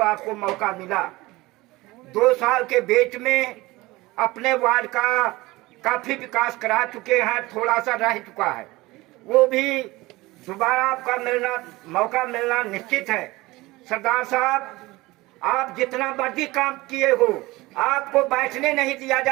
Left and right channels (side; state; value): left; quieter; 20.4 dB